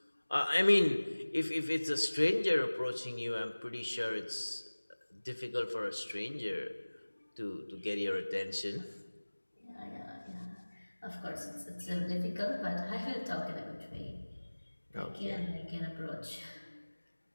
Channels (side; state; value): both; inverted; correlation -1.00